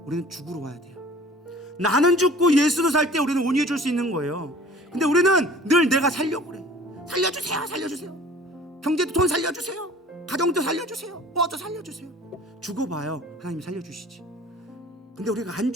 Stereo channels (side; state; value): both; normal; correlation 0.47